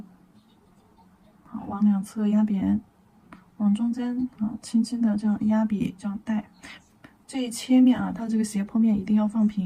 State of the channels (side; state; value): both; identical; correlation 1.00